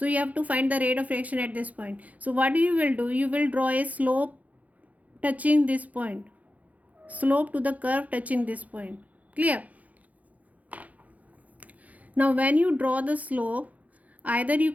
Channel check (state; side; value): late; left; 0.073 ms